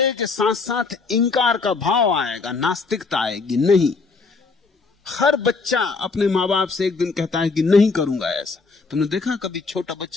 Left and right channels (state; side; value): quieter; right; 4.3 dB